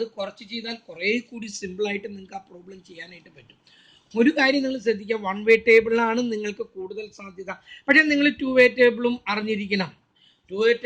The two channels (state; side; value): identical; both; correlation 1.00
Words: കുറച്ച് ചെയ്താൽ കുറേ കൂടി സിമ്പിളായിട്ട് നിങ്ങൾക്ക് ആ പ്രോബ്ലം ചെയ്യാനായിട്ട് പറ്റും. ഒരു കാര്യം നിങ്ങൾ ശ്രദ്ധിക്കുക, 1 വേ ടേബിളിലാണ് നിങ്ങൾക്ക് കൂടുതൽ സാധ്യത. പക്ഷേ നിങ്ങൾ 2 വേ ടേബിളും അറിഞ്ഞിരിക്കണം. 2 വേ